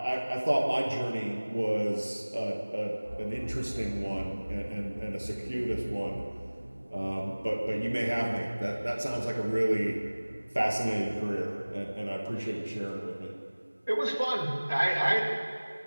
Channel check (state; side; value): inverted; both; correlation -1.00